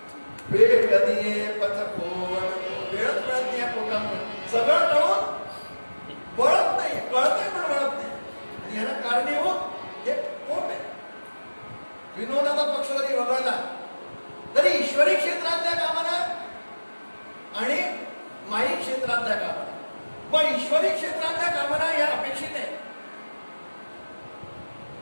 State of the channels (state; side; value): inverted; both; correlation -1.00